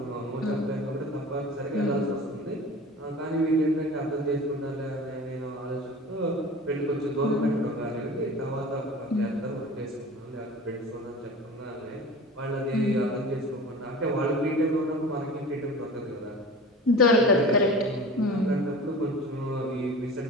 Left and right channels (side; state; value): both; normal; correlation 0.37